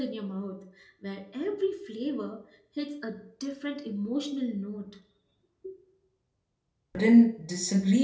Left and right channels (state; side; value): identical; both; correlation 1.00